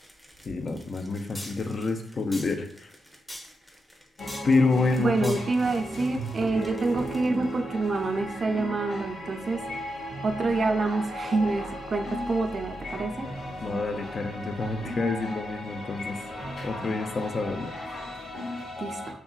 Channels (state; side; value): normal; both; correlation 0.85